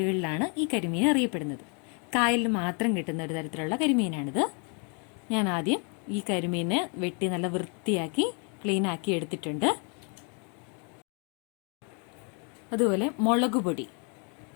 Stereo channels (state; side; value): quieter; right; 37.1 dB